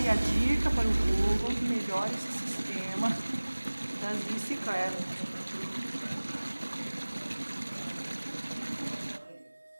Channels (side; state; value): both; inverted; correlation -1.00